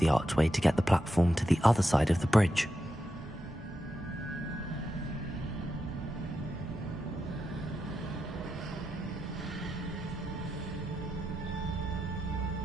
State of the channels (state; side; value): normal; both; correlation 0.87